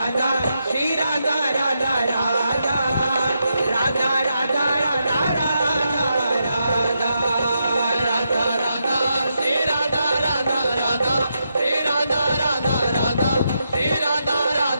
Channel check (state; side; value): inverted; both; correlation -0.83